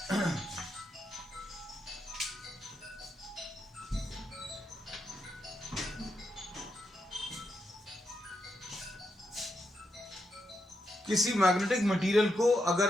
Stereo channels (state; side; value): normal; both; correlation 0.83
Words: मैग्नेटिक मटेरियल को अगर